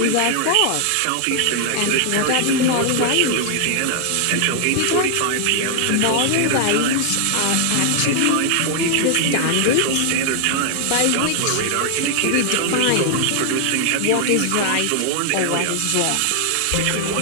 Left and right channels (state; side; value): different; both; correlation 0.00